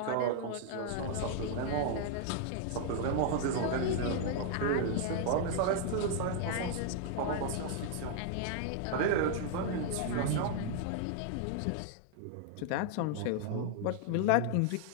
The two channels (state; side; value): different; both; correlation 0.00